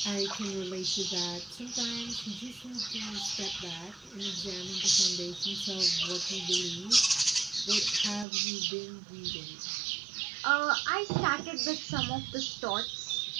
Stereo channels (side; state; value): left; drops out; at 8.2 s